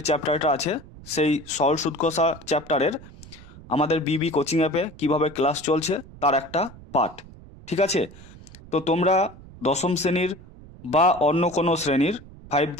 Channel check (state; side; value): noise; right; rumble, 19 dB below the sound